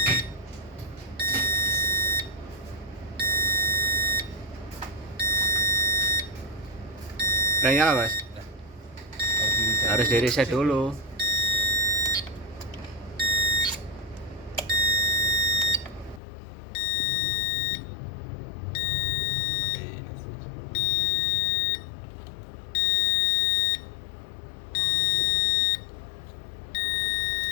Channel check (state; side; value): drops out; right; at 16.2 s